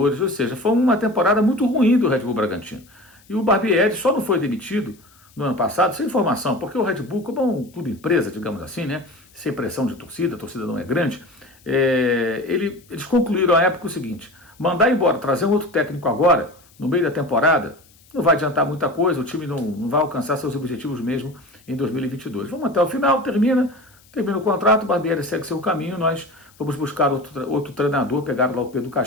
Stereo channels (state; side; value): noise; left; hiss, 29 dB below the sound